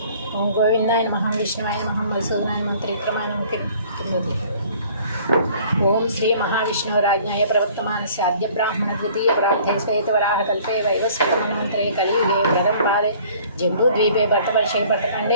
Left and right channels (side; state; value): both; inverted; correlation -0.53